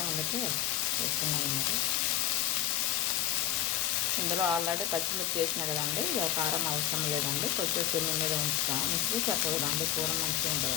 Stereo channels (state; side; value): quieter; right; 11.9 dB